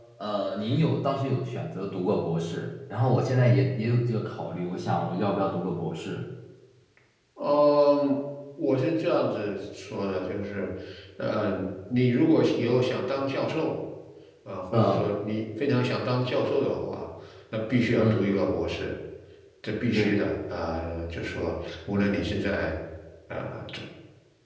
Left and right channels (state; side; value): identical; both; correlation 1.00